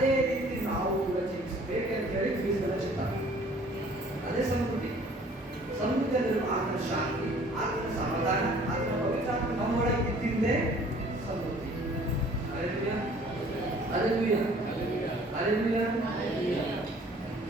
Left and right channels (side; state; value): both; normal; correlation 0.54